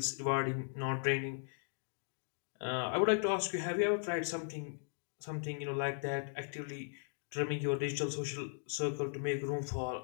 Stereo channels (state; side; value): silent; right; digital silence